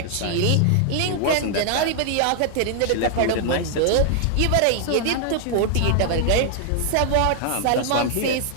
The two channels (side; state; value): both; different; correlation 0.00